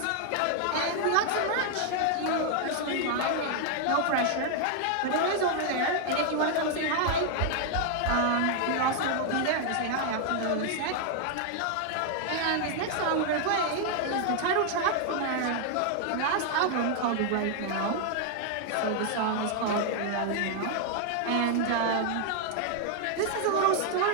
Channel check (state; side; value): different; both; correlation 0.00